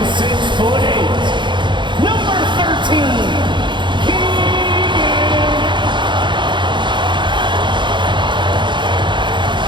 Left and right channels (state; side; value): late; left; 0.23 ms